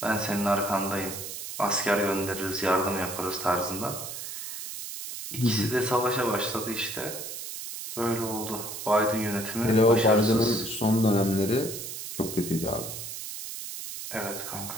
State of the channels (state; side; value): noise; right; hiss, 8 dB below the sound